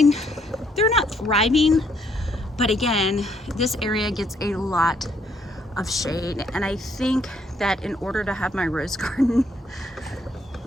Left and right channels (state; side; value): normal; both; correlation 0.69